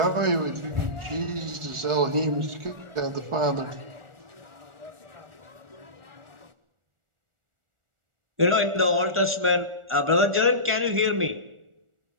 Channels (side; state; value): left; late; 1.4 ms